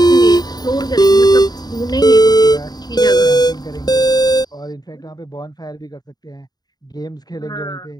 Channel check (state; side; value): late; right; 0.19 ms